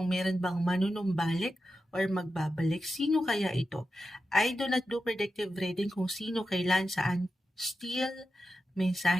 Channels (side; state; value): both; normal; correlation 0.90